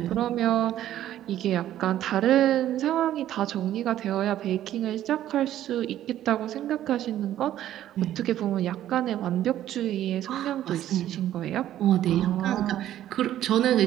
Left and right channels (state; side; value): quieter; left; 12.3 dB